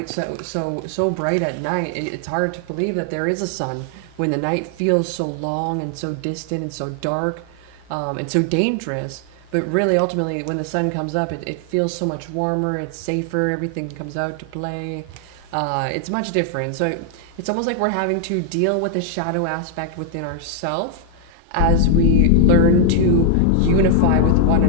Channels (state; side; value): different; both; correlation 0.00